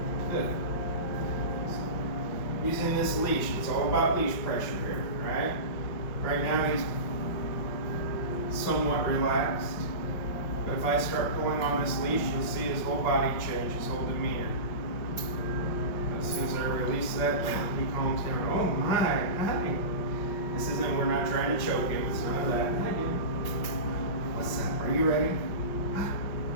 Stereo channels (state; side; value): late; right; 5.4 ms